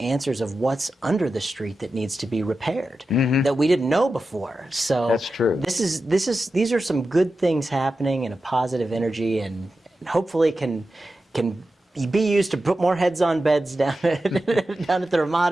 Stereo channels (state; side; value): normal; both; correlation 0.92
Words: of what's under the street that needs to be repaired that we didn't know before. So that's true. These are some good things happening and a positive energy, and hopefully can be used to put more heads on beds down at the